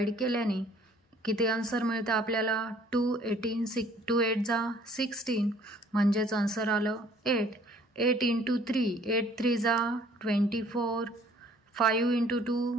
केल्याने किती आन्सर मिळतं आपल्याला? 2 8 जा 16, म्हणजेच आन्सर आलं 8। 8 × 3 8 3 जा 24, 5 ×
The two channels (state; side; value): normal; both; correlation 0.57